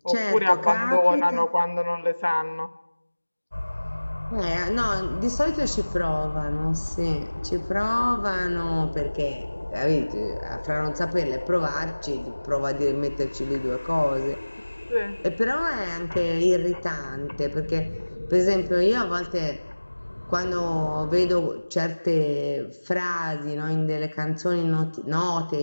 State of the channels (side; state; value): both; inverted; correlation -1.00